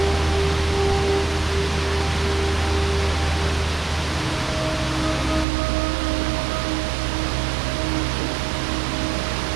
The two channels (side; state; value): left; drops out; at 5.5 s